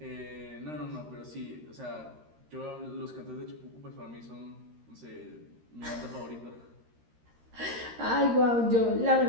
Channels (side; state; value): left; late; 13 ms